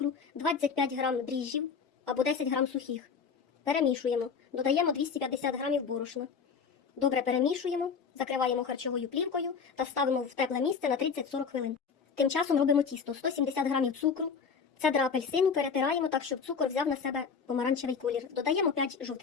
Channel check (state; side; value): quieter; right; 5.9 dB